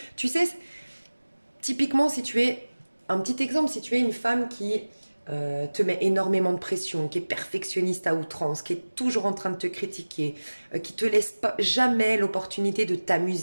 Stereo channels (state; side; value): inverted; both; correlation -1.00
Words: tu sais, typiquement, si tu es, un petit exemple, si tu es une femme qui te met énormément de pression, qui est perfectionniste à outrance, qui est toujours en train de te critiquer, qui te laisse pas jamais l'opportunité de